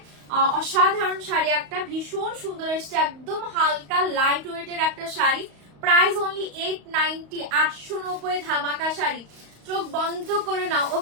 অসাধারণ শাড়ি একটা, ভীষণ সুন্দর এসছে, একদম হালকা লাইট ওয়েটের একটা শাড়ি। প্রাইস অনলি 890, 890 ধামাকা শাড়ি। চোখ বন্ধ করে নাও।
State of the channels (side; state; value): left; late; 35 ms